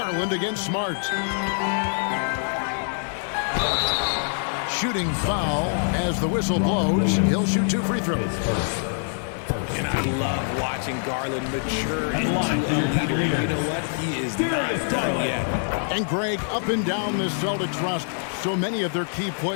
against Smart. Shooting foul as the whistle blows. He'll shoot 2 free throws. And I love watching Garland mature into a leader. You know what? He is not done yet. And Greg, up and down the Celtics roster, so many of their key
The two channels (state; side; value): silent; right; 62 dB below the other